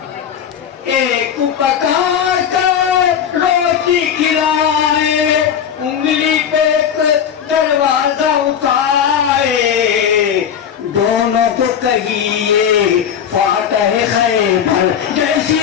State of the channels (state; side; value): quieter; right; 8.4 dB